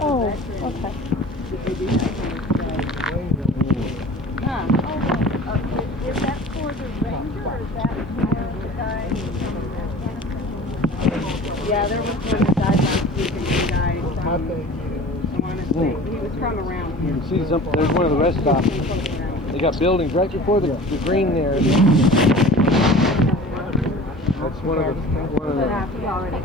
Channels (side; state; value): both; normal; correlation 0.41